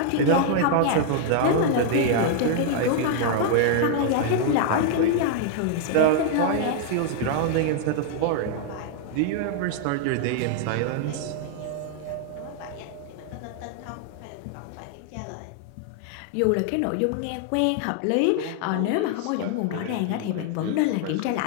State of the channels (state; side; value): different; both; correlation 0.00